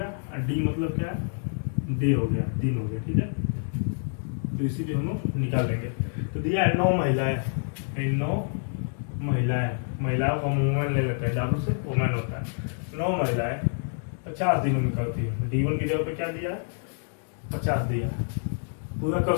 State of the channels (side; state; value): right; silent; digital silence